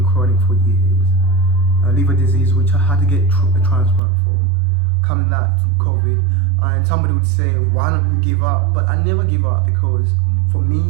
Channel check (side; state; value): left; drops out; at 4.0 s